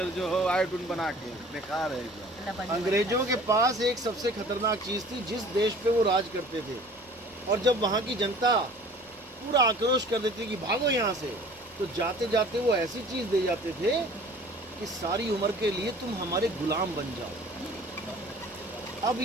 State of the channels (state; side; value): normal; both; correlation 0.48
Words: जो हो आयोडीन बना के, बेकार है। अंग्रेजों के पास एक सबसे खतरनाक चीज थी, जिस देश पे वो राज करते थे, और जब वहाँ की जनता पूरा आक्रोश कर देती कि भागो यहाँ से, तो जाते जाते वो ऐसी चीज दे जाते थे कि सारी उम्र के लिए तुम हमारे गुलाम बन जाओ। अब